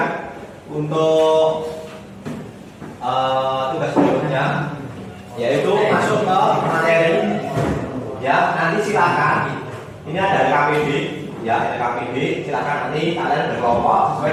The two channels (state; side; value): identical; both; correlation 1.00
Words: untuk tugas berikutnya, yaitu masuk ke materi. Ya, nanti silakan. Ini ada KPD, ya, ada KPD. Silakan nanti kalian berkelompok